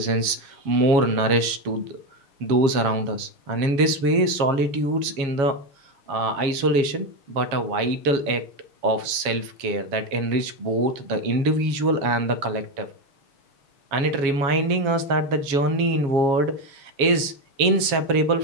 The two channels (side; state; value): left; late; 7.2 ms